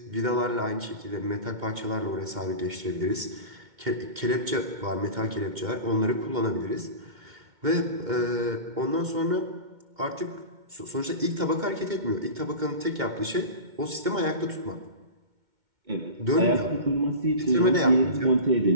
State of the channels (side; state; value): left; late; 2.1 ms